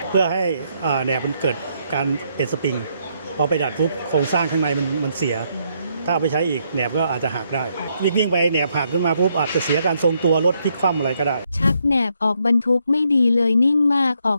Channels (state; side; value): inverted; both; correlation -0.75